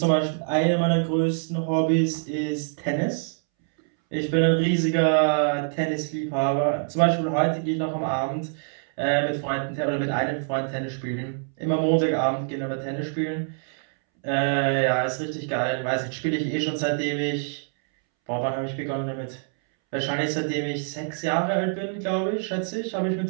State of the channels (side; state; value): left; silent; 62 dB below the other